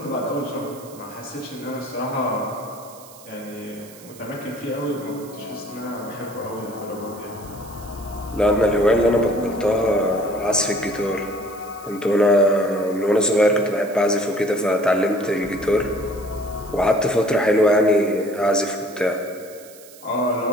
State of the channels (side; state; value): right; noise; hiss, 21 dB below the sound